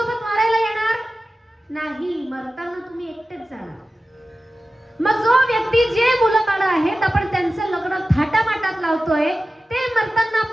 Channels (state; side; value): normal; both; correlation 0.95